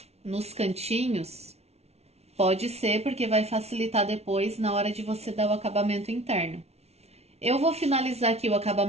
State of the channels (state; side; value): late; left; 0.31 ms